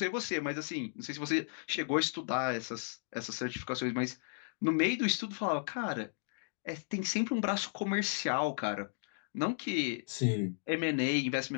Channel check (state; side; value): silent; right; digital silence